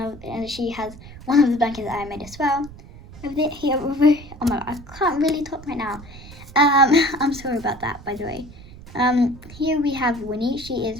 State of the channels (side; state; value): right; noise; rumble, 17 dB below the sound